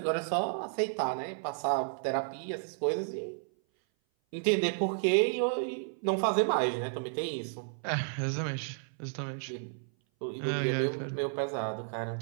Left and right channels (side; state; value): left; silent; 56 dB below the other